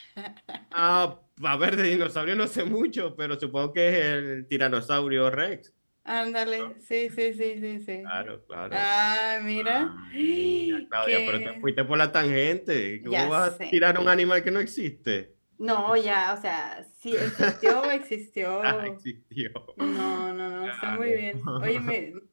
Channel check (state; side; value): inverted; both; correlation -1.00